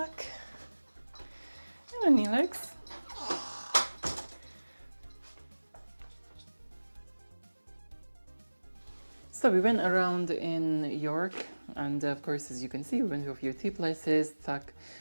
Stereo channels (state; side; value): inverted; both; correlation -1.00